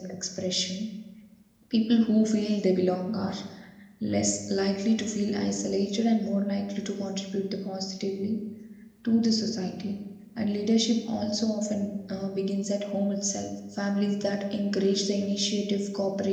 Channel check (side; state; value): both; identical; correlation 1.00